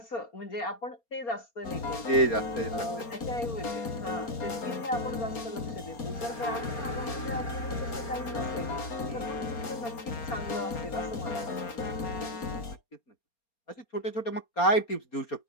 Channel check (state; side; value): late; right; 4.3 ms